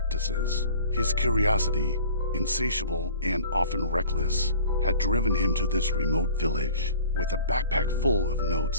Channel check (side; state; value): both; inverted; correlation -0.45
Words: His curiosity, insatiable and often reckless, had driven him to this remote village. With a backpack full of